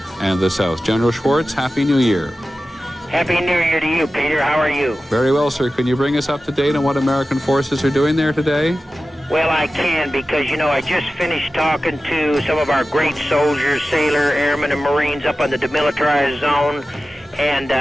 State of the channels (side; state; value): both; normal; correlation 0.94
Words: and the south. General Schwartz, Happy New Year. Happy New Year to you, Peter. How are you? Very well, sir. Can you bring us up to date on what American forces are doing there today? Well, I can because, I just finished talking to some of our great soldiers, sailor, airmen, and Marines up on the demilitarized zone, and